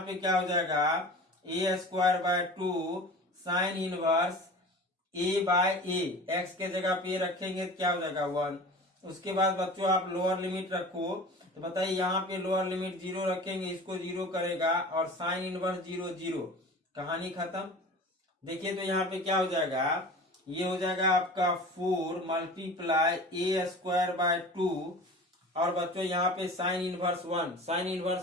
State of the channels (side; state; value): both; normal; correlation 0.38